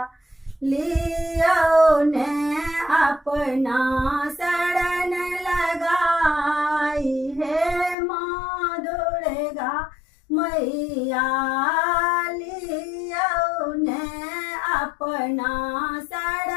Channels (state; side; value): drops out; right; at 8.0 s